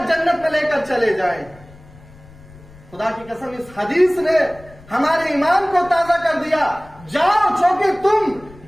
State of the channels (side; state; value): left; noise; rumble, 22 dB below the sound